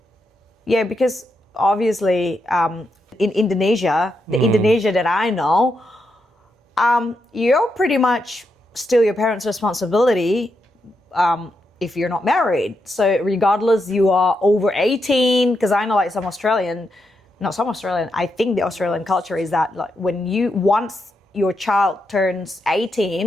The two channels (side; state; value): both; normal; correlation 0.83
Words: Yeah, because obviously in Indonesia, the Indonesia that I know, you're pretty much still your parents' responsibility if you're not married. So regardless you are over 18, because I know like some Australian, not some Australian, I think the Australian culture is that like when you once your child turns